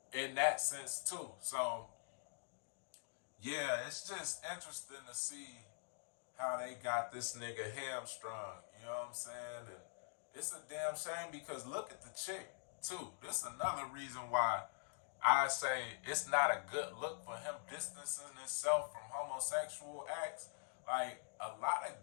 in that sense too. So yeah, it's just interesting to see how they got this nigga hamstrung. You know what I'm saying? And it's a damn shame, because look at the chick too. This is another reason why I say it's not a good look for him distancing himself from homosexual acts. Like, a lot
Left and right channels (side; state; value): right; silent; digital silence